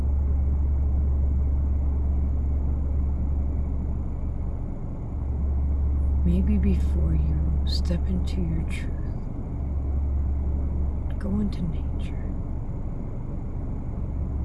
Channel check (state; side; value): identical; both; correlation 1.00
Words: Maybe before you step into your truth, go into nature.